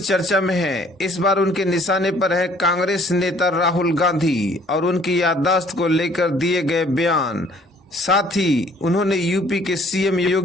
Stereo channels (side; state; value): both; normal; correlation 0.58